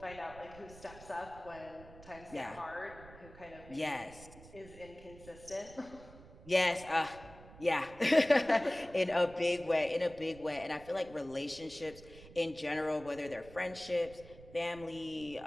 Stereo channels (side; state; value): right; noise; rumble, 19 dB below the sound